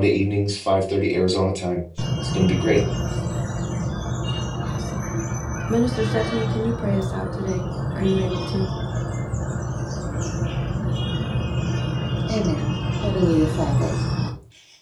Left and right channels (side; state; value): both; identical; correlation 1.00